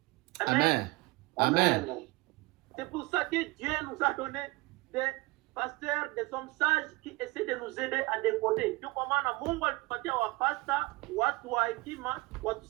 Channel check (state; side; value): quieter; left; 22.8 dB